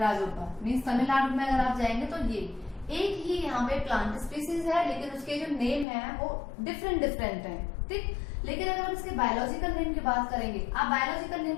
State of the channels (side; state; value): right; drops out; at 5.9 s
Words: मीन्स तमिलनाडु में अगर आप जाएंगे तो ये एक ही यहाँ पे प्लांट स्पीसीज है, लेकिन उसके जो नेम है वो डिफरेंट डिफरेंट है, ठीक। लेकिन अगर हम इसके बायोलॉजिकल नेम की बात करेंगे, आप बायोलॉजिकल